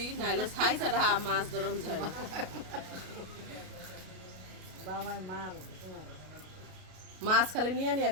নাইলে ছাই ছাড়া মাছ ধরন যায় না। মাছ খালি নিয়ে নিয়ে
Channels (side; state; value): left; late; 33 ms